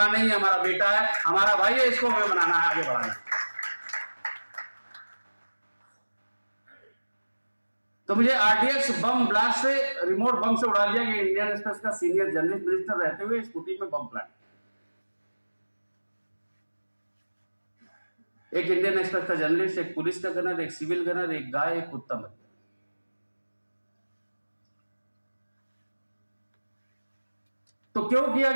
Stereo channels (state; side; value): inverted; both; correlation -1.00